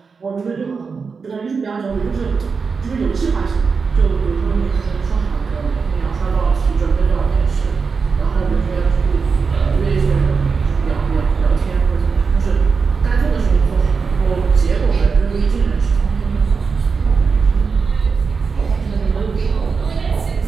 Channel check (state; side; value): quieter; left; 5.2 dB